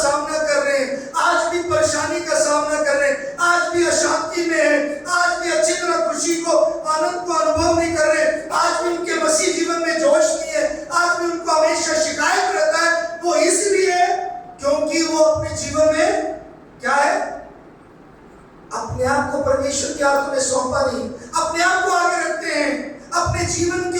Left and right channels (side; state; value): both; identical; correlation 1.00